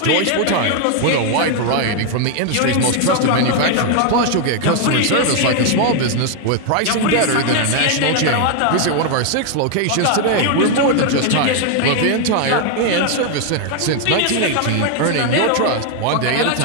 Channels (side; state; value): both; different; correlation 0.00